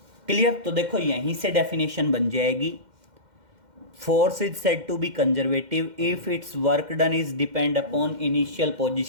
Clear? तो देखो यहीं से डेफिनेशन बन जाएगी। Force is said to be conservative if its work done is depend upon initial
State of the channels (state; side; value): late; left; 2.1 ms